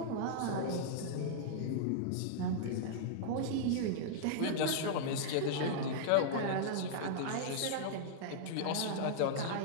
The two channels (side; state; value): both; different; correlation -0.02